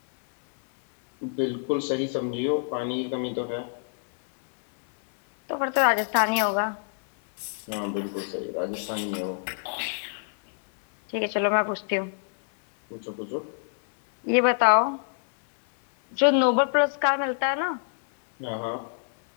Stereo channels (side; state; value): right; silent; 58 dB below the other